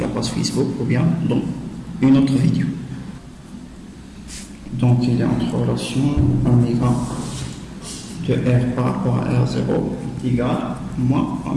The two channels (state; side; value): identical; both; correlation 1.00